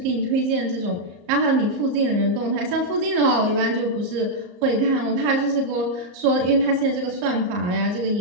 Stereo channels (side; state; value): left; late; 34 ms